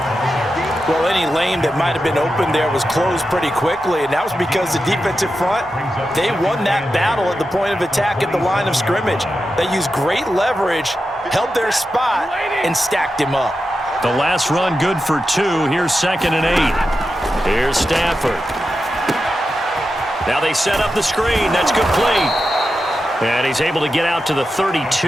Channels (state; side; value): normal; both; correlation 0.90